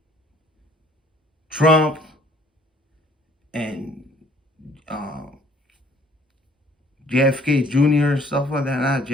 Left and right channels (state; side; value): normal; both; correlation 0.59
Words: Trump and JFK Jr., stuff like that. Not